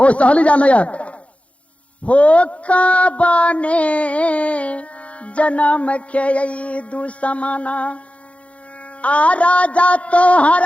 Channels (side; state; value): right; late; 0.063 ms